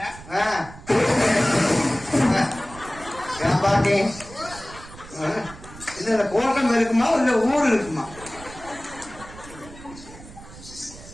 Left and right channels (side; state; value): right; noise; rumble, 17 dB below the sound